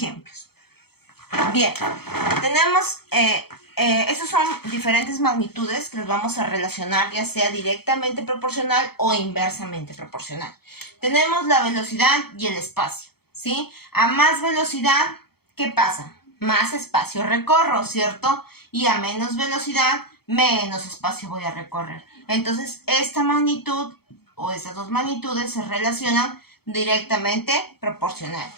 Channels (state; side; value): late; right; 0.96 ms